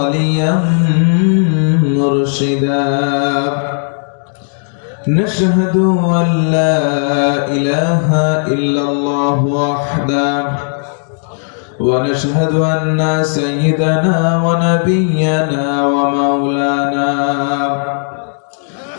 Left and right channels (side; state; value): right; silent; digital silence